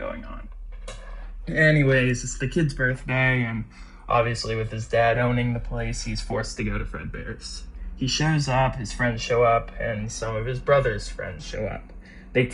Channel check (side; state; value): both; identical; correlation 1.00